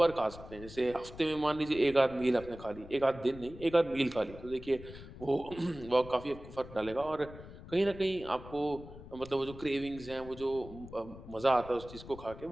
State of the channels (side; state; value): left; noise; rumble, 15 dB below the sound